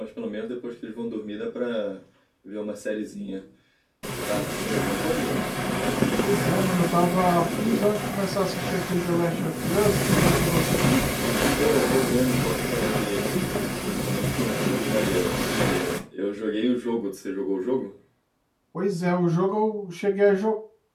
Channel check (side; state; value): both; identical; correlation 1.00